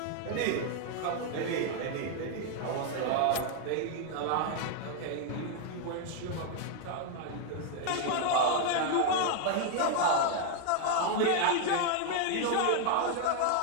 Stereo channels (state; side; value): different; both; correlation 0.00